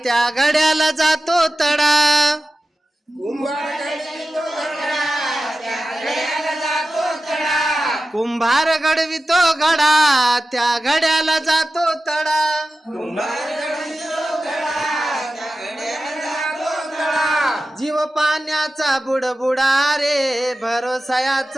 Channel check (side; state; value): both; normal; correlation 0.94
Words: त्या घड्याला जातो तडा कुंभार घडवितो घडा त्या घड्याला जातो तडा जीव पाण्याचा बुडबुडा रे